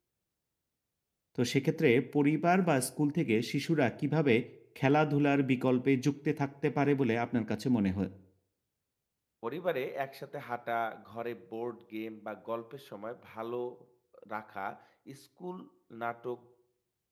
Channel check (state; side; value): identical; both; correlation 1.00